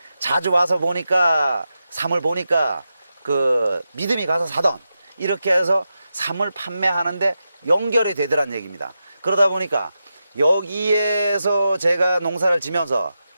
자주 와서 보니까 삼을 보니까 그 믿음이 가서 사던, 이렇게 해서 삼을 판매하는데 연결이 되더란 얘기입니다. 그러다 보니까 여기에서 제가 농사를 지면서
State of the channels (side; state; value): both; inverted; correlation -0.89